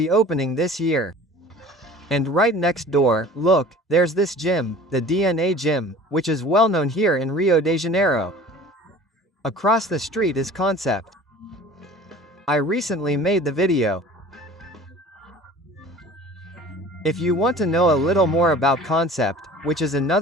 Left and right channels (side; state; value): both; normal; correlation 0.44